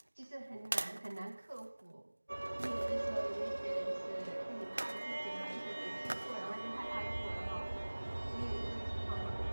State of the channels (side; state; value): both; inverted; correlation -1.00